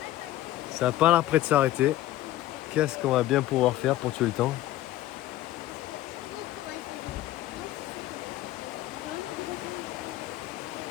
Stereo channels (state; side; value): quieter; right; 14.7 dB